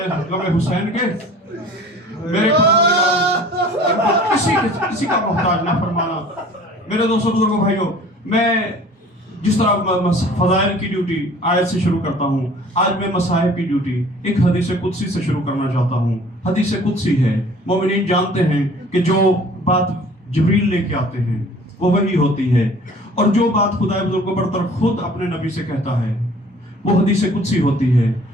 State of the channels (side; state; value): both; normal; correlation 0.49